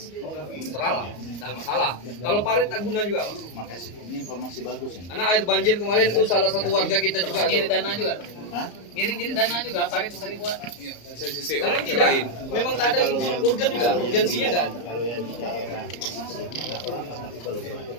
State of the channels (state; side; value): late; right; 34 ms